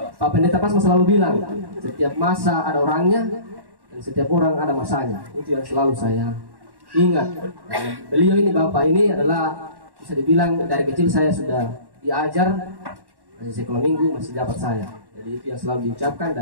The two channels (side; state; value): left; late; 1.1 ms